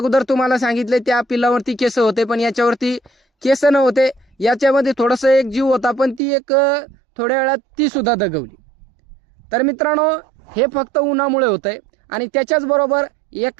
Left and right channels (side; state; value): left; drops out; at 6.2 s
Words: तुम्हाला सांगितले त्या पिल्लावरती केस होते, पण याच्यावरती केस नव्हते. याच्यामध्ये थोडंसं एक जीव होता, पण ती एक थोड्या वेळात ती सुद्धा दगवली. तर मित्रांनो, हे फक्त उन्हामुळे होतंय. आणि त्याच्याच बरोबर